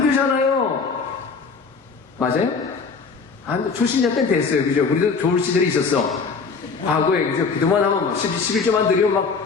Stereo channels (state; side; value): quieter; right; 5.0 dB